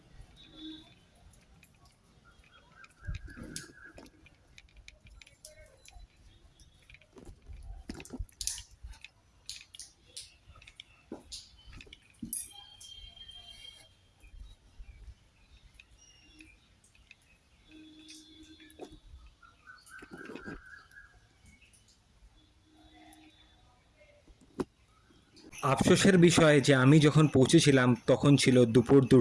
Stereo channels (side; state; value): both; identical; correlation 1.00